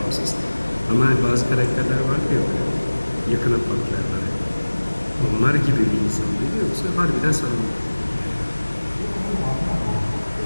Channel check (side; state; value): both; inverted; correlation -1.00